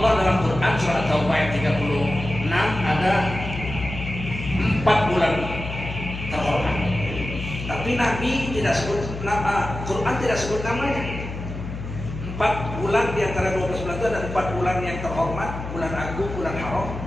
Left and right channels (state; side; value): noise; left; hum, 8 dB below the sound